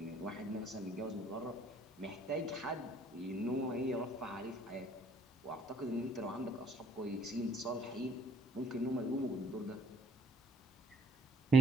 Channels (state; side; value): normal; both; correlation 0.63